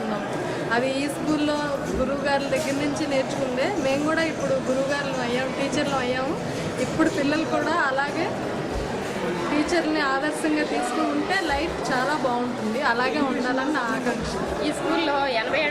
ఉన్నాం. అది ఈ స్కూల్లో గురువుగారుల దగ్గర నుంచి నేర్చుకుందే. మేము కూడా ఇప్పుడు గురువుగారులు అయ్యాము, టీచర్లు అయ్యాము. ఇప్పుడు పిల్లలు కూడా అలాగే టీచర్ని ఆదర్శంగా తీసుకుంటే లైఫ్ చాలా బాగుంటుంది. అలాగే ఉండాలని నా ఆకాంక్ష. ఈ స్కూల్లో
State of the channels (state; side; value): identical; both; correlation 1.00